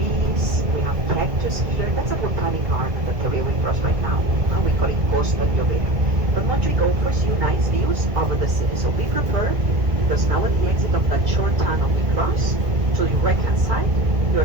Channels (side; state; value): left; late; 2.0 ms